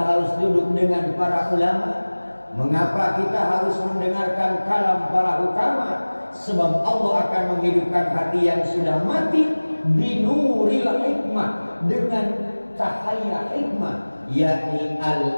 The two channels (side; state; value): both; inverted; correlation -1.00